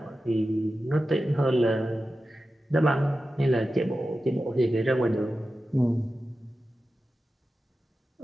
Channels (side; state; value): both; normal; correlation 0.93